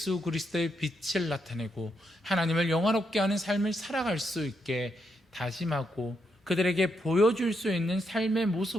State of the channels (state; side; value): normal; both; correlation 0.80